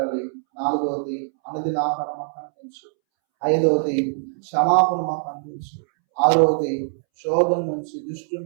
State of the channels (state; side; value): silent; left; 64 dB below the other